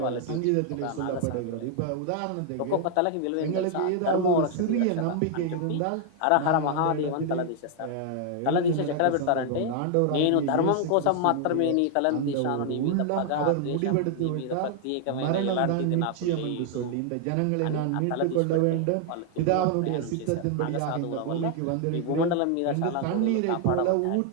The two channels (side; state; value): both; different; correlation 0.00